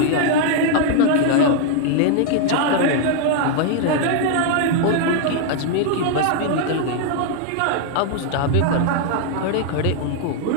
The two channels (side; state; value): both; different; correlation 0.00